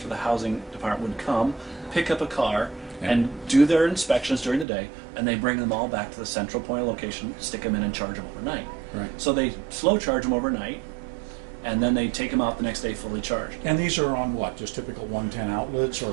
the housing department would come, pick up a car, and do their inspections during the day, and they bring them all back to the central point of location, stick them in, and charge them overnight. Right. So they slow charge them overnight, and then they take them out the next day fully charged. And these are on what? Just typical 110 outlets,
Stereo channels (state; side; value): drops out; left; at 4.7 s